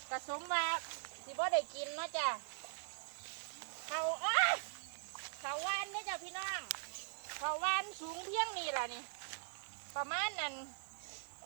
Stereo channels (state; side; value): silent; left; digital silence